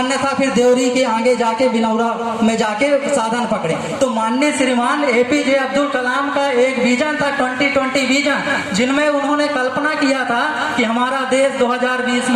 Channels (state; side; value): identical; both; correlation 1.00